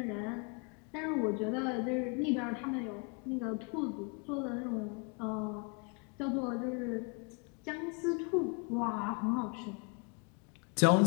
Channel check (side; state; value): right; quieter; 35.1 dB